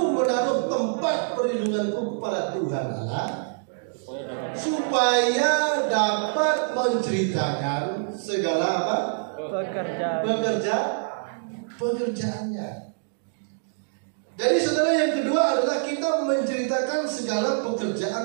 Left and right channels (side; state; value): left; silent; digital silence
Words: menaruh tempat perlindunganku kepada Tuhan Allah, supaya dapat menceritakan segala apa? Pekerjaannya. Jadi saudara, yang kedua adalah kita menceritakan segala